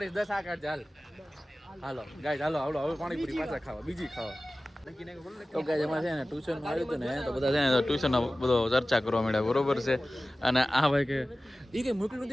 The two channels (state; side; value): normal; both; correlation 0.96